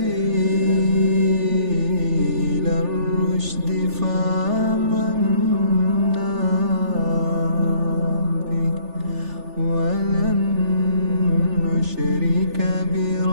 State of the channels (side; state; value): left; late; 3.4 ms